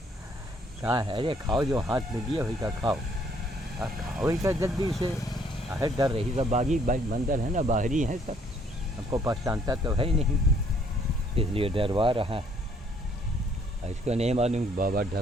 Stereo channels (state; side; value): normal; both; correlation 0.64